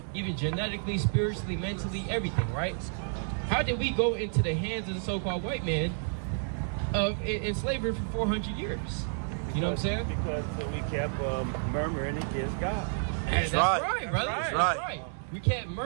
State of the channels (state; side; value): silent; left; digital silence